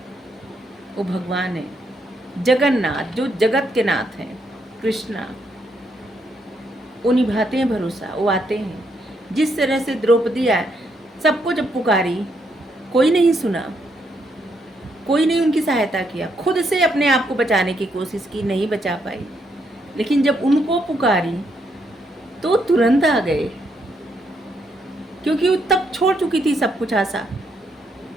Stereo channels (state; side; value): normal; both; correlation 0.76